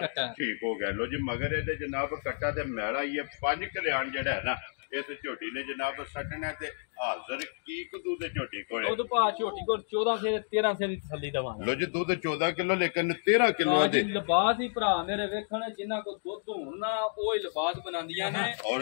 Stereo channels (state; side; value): silent; right; digital silence